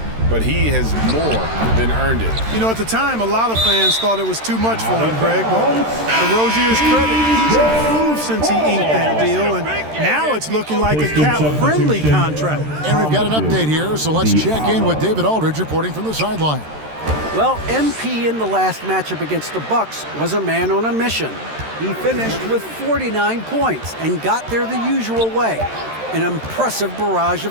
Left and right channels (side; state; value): left; late; 13 ms